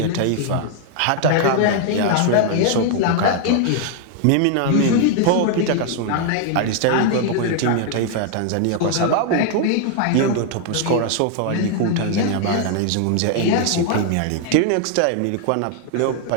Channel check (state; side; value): different; both; correlation 0.00